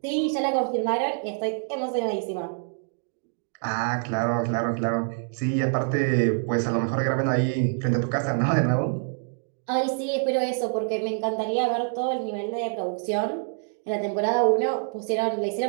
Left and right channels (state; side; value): silent; left; 60 dB below the other